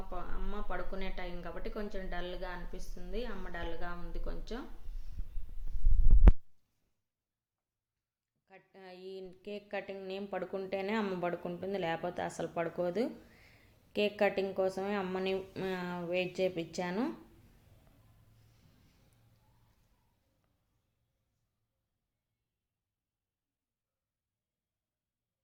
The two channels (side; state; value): both; identical; correlation 1.00